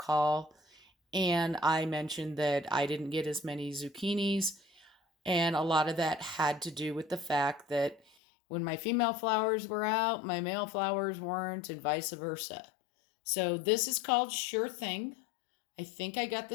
and I mentioned that I didn't get as many zucchinis, and a lot of that had to do with the fact that when my female flowers were out, my male flowers weren't, and vice versa. So this is called Sure Thing. I think I got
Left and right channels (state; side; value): drops out; right; at 8.0 s